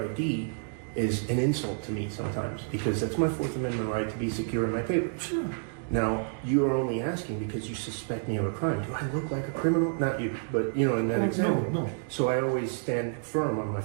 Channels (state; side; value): silent; left; digital silence